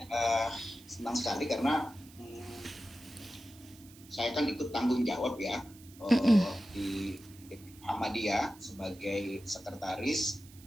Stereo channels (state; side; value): noise; right; hiss, 22 dB below the sound